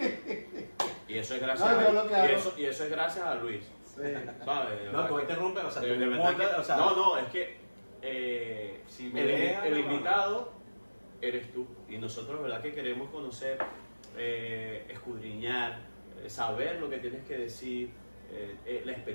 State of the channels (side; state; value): both; inverted; correlation -1.00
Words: Y eso es gracias No, yo lo que hago- y eso es gracias a Luis. Sí. ¿Sabes? No, tú interrumpes, o sea, De tú verdad montas, que- o sea, no, es que si me el dejas, no, invitado eres tú. Y nosotros, ¿verdad? Que queremos conocer, escudriñar, saber lo que tienes que decir, la